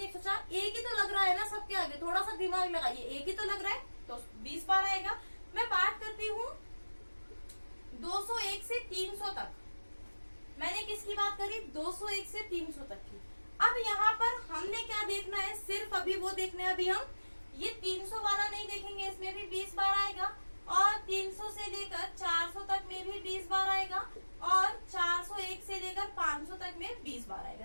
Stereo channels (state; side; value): inverted; both; correlation -1.00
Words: एक ही तो लग रहा है ना सबके आगे, थोड़ा सा दिमाग लगाइए, एक ही तो लग रहा है, तो 20 बार आएगा। मैं बात करती हूँ 201 से 300 तक, मैंने किसकी बात करी, 201 से 300 तक की। अब यहाँ पर हमने क्या देखना है, सिर्फ अभी वो देखना है, अभी हम ये 300 वाला नहीं देखेंगे, इसमें भी 20 बार आएगा, और 300 से लेकर 400 तक में भी 20 बार आएगा, और 401 से लेकर 500 तक में 20 बार आएगा।